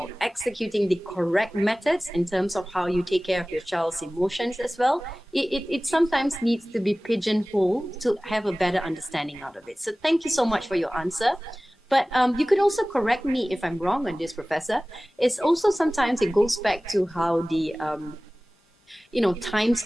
executing the correct methods in terms of how you take care of your child's emotions as well, it sometimes needs to be pigeonholed to have a better understanding out of it. So thank you so much for your answer. But you could also correct me if I'm wrong on this, Professor. It's also sometimes it goes back to how the times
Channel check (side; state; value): both; normal; correlation 0.98